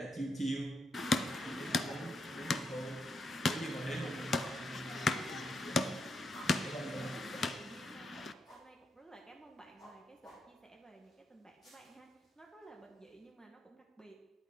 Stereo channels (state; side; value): normal; both; correlation 0.81